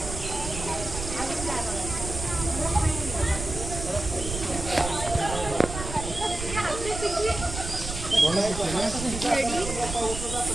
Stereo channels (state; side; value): noise; right; rumble, 8 dB below the sound